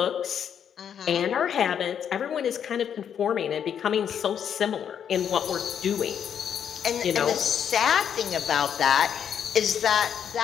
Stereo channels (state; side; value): quieter; right; 8.5 dB